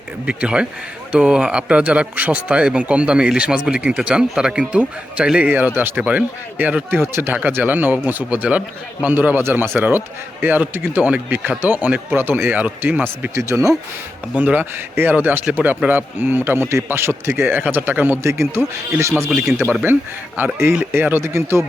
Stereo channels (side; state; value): both; normal; correlation 0.89